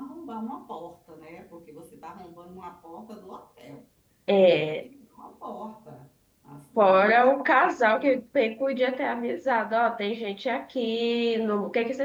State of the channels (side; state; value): both; identical; correlation 1.00